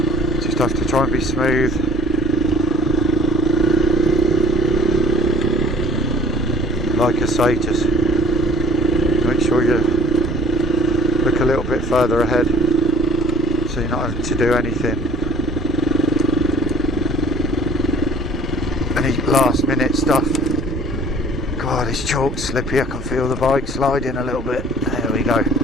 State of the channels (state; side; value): normal; both; correlation 0.53